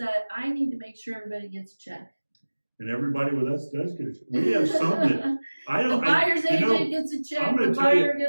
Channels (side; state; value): both; inverted; correlation -1.00